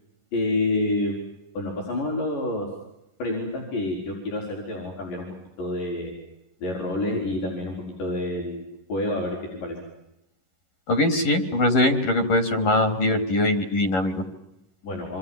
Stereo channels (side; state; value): right; late; 11 ms